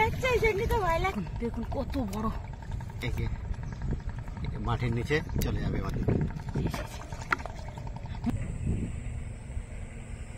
এই জন্য তো ভয় লাগে। দেখুন কত বড়, মাটির নিচে চলে যাবে আমাদের।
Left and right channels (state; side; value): identical; both; correlation 1.00